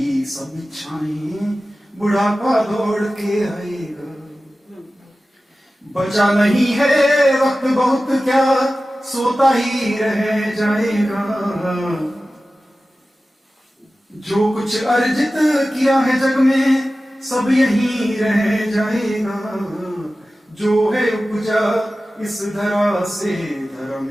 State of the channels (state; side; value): normal; both; correlation 0.95